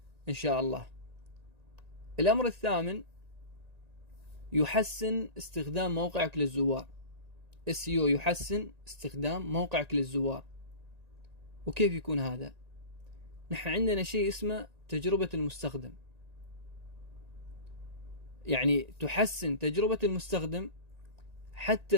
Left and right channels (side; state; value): left; late; 1.9 ms